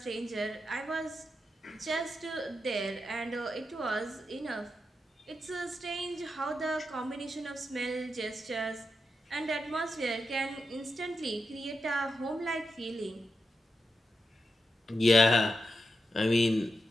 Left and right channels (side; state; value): both; normal; correlation 0.87